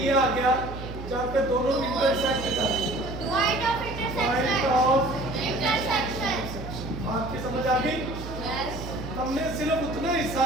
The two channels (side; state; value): right; noise; hum, 10 dB below the sound